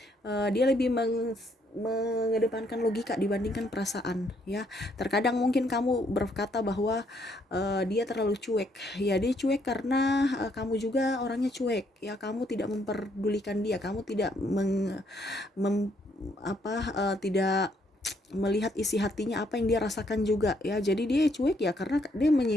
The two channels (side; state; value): both; normal; correlation 0.70